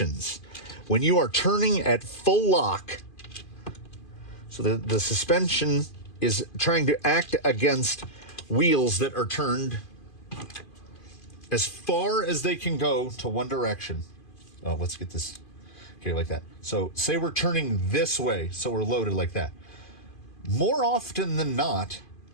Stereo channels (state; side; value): late; right; 2.5 ms